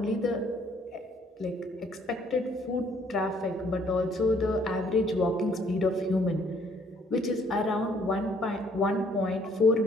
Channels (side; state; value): both; normal; correlation 0.64